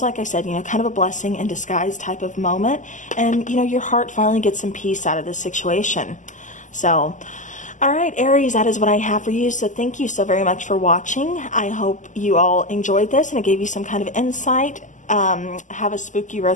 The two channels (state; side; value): late; right; 0.37 ms